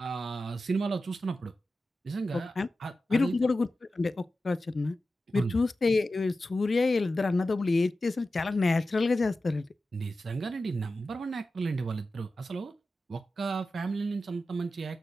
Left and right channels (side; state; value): both; normal; correlation 0.93